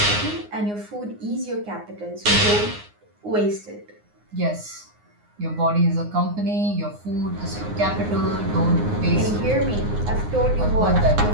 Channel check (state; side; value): late; left; 9.6 ms